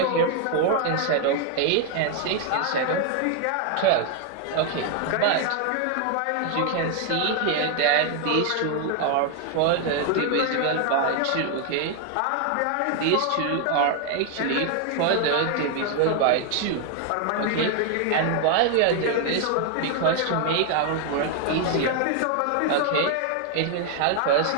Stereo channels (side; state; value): both; different; correlation 0.00